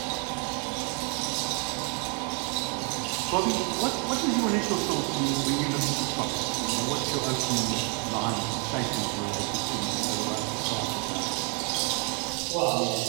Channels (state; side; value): quieter; left; 36.8 dB